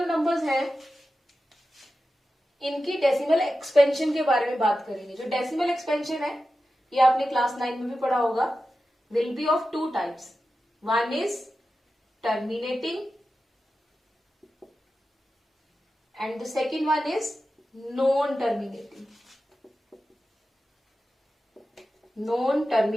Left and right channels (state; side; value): normal; both; correlation 0.92